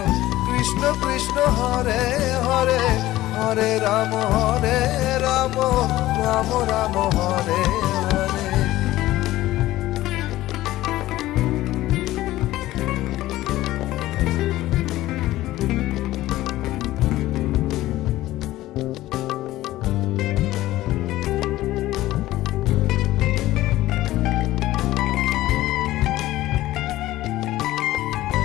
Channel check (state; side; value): quieter; right; 16.0 dB